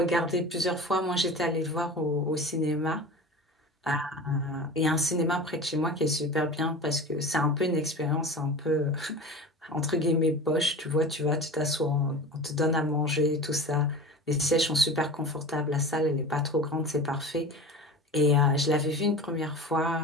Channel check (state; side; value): normal; both; correlation 0.34